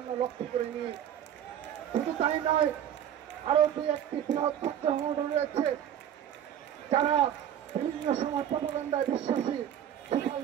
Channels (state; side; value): quieter; left; 10.0 dB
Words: লক্ষ্য করিনি। শুধু তাই নয়, আরো দুই একটি বৃহৎ ছাত্র সংগঠন রয়েছে যারা বিভিন্ন সময় প্রপাগান্ডায় বিশ্বাসী, সোশ্যাল